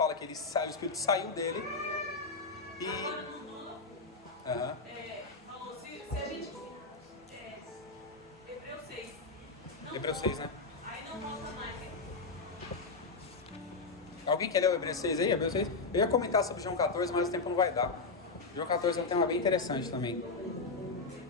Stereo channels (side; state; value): right; quieter; 4.0 dB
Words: que o Espírito saiu dele e... Agora não falou, se a gente... Hebreus 6. Hebreus 6, né? Aí não volta mais, hein? Alguém quer ler o Hebreus 6 aí? Hebreus 6? Eu ia comentar sobre João 14, mas o tempo não vai dar. João 14 é um tema bem interessante também.